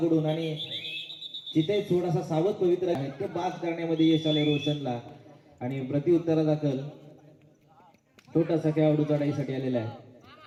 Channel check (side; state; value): both; identical; correlation 1.00